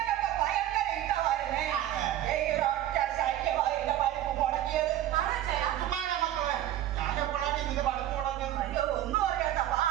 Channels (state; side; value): quieter; left; 12.6 dB